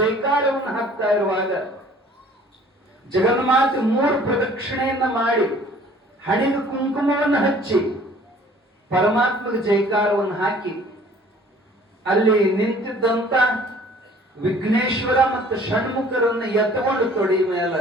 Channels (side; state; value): both; normal; correlation 0.53